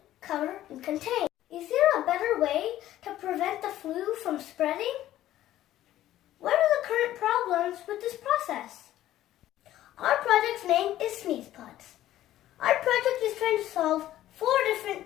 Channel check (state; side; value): quieter; right; 13.5 dB